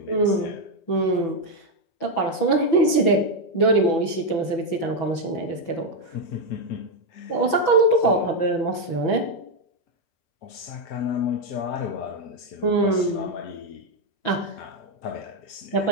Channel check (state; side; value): late; right; 6.1 ms